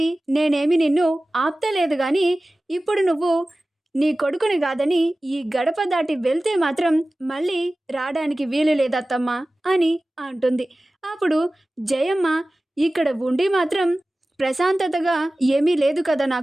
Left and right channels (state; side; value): normal; both; correlation 0.96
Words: నేనేమి నిన్ను ఆప్తలేదు కానీ ఇప్పుడు నువ్వు నీ కొడుకుని కాదని ఈ గడప దాటి వెళ్తే మాత్రం మళ్ళీ రావడానికి వీలు లేదత్తమ్మా అని అంటుంది. అప్పుడు జయమ్మ, ఇక్కడ ఉండి మాత్రం ప్రశాంతతగా ఏమీ లేదు కదా